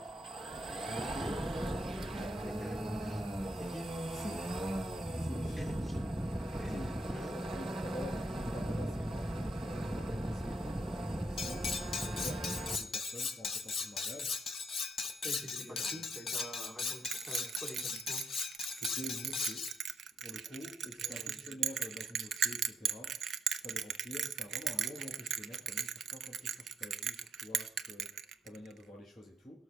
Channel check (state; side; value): normal; both; correlation 0.78